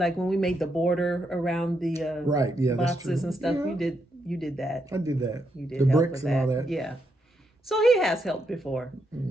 when we made the border around the right, yeah, boxes and stuff, yeah. you did that. I did that. You did the help bricks with and that. all that. Yeah. So he has helped before.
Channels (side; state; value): both; normal; correlation 0.80